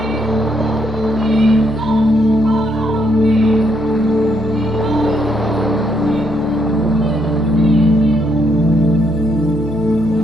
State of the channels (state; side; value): normal; both; correlation 0.74